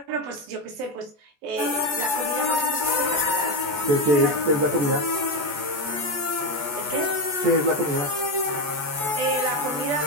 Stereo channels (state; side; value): late; left; 14 ms